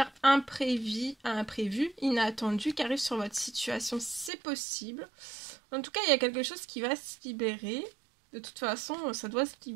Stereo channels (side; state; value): left; drops out; at 4.3 s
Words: imprévue, inattendue qui arrive sur votre situation. C'est possible. En tout cas, il y a quelque chose qui va se libérer. De toute façon, ça doit se